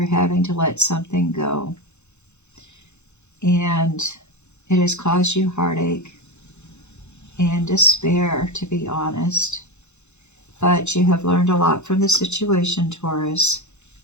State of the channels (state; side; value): late; right; 0.82 ms